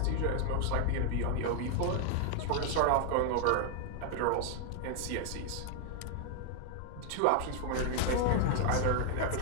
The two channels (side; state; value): both; different; correlation 0.00